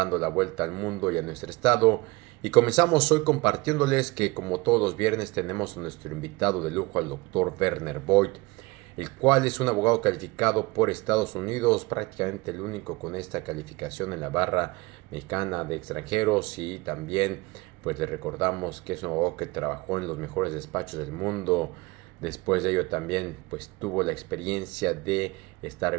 la vuelta al mundo y a nuestro estado. Y comenzamos hoy compartiéndoles que como todos los viernes tenemos a nuestro invitado de lujo, al doctor Werner Voigt, el cual es un abogado calificado por Estados Unidos, prácticamente el único con esta calificación en la barra mexicana de extranjeros. Y también pues le recordamos que es un abogado que trabajó en los mejores despachos del mundo. Después de ello también pues tuvo la experiencia de estar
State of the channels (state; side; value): quieter; left; 23.2 dB